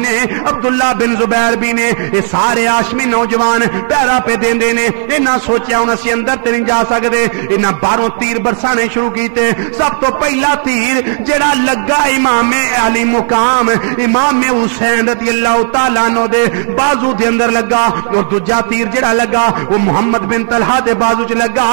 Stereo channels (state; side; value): silent; left; digital silence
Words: نے، عبداللہ بن زبیر بھی نے، اے سارے ہاشمی نوجوان پیرا پہ دیندے نے۔ انہاں سوچیا ہن اسی اندر تے نہیں جا سکدے، انہاں باہروں تیر برسانے شروع کیتے۔ سب تو پہلا تیر جڑا لگا امام علی مقام امام حسین رضی اللہ تعالیٰ عنہ دے بازو دے اندر لگا، اور دوجا تیر جڑا لگا وہ محمد بن طلحہ دے بازو چ لگا،